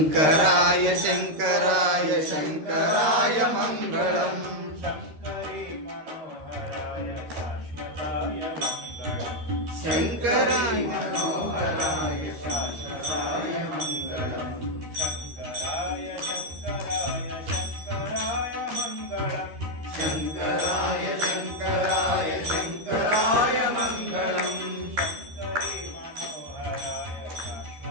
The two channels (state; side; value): late; left; 13 ms